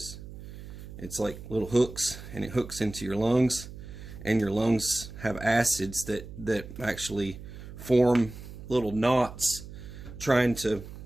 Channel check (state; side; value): noise; right; hum, 13 dB below the sound